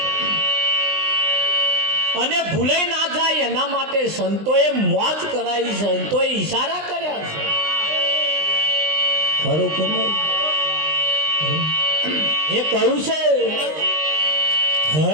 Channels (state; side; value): late; left; 20 ms